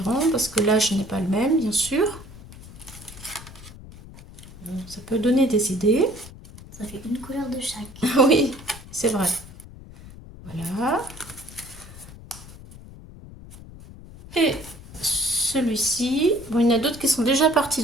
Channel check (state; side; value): noise; left; rumble, 17 dB below the sound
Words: parce que là je n'ai pas le même, bien sûr. Ça peut donner des idées. Ça fait une couleur de chaque. Oui, c'est vrai. Voilà. Et celui-ci, bon, il y en a d'autres qui sont déjà partis,